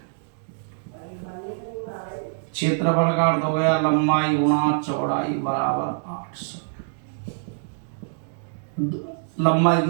क्षेत्रफल का अर्थ हो गया लंबाई गुणा चौड़ाई बराबर 8 से। लंबाई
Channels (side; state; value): left; silent; digital silence